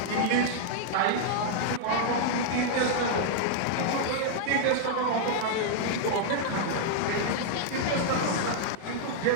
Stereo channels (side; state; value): both; different; correlation -0.01